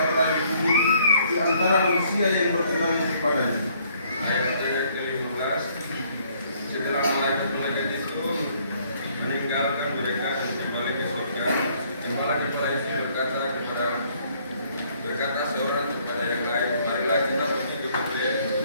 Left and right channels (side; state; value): both; inverted; correlation -0.64